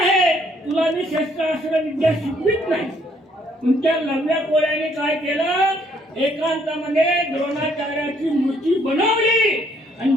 तुला मी शस्त्रास्त्र विद्या शिकवित नाही. तुमच्या लढल्या कोळ्याने काय केलं, एकांतामध्ये द्रोणाचार्याची मूर्ती बनवली आणि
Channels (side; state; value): both; normal; correlation 0.67